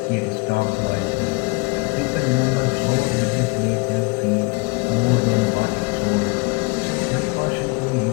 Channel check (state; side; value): quieter; right; 29.2 dB